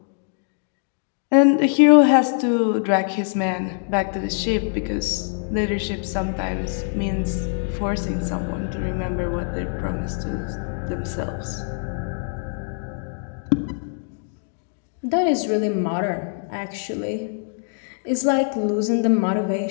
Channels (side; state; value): right; silent; 58 dB below the other